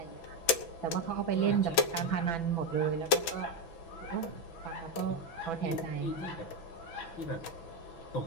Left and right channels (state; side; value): late; right; 6.0 ms